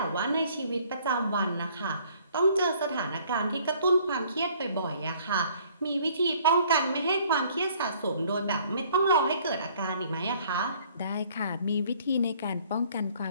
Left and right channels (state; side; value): inverted; both; correlation -0.59